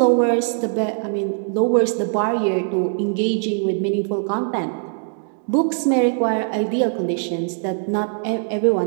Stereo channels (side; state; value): left; silent; digital silence